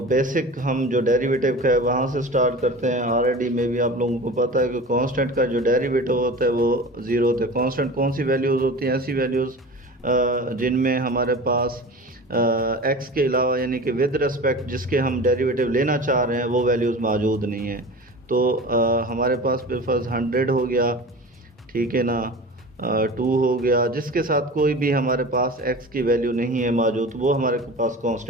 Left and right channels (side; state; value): both; normal; correlation 0.35